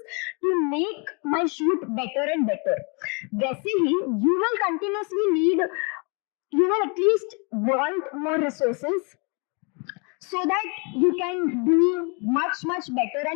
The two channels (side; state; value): right; quieter; 34.9 dB